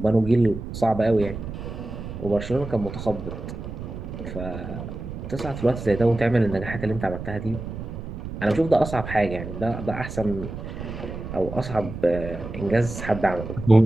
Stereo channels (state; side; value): noise; right; rumble, 8 dB below the sound